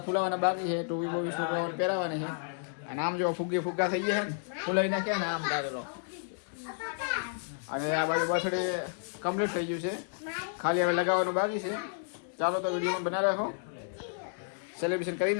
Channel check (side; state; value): right; silent; digital silence